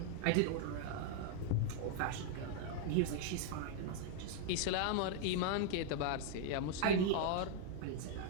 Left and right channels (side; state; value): both; different; correlation 0.00